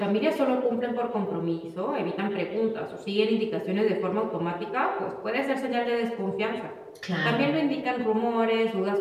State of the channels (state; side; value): identical; both; correlation 1.00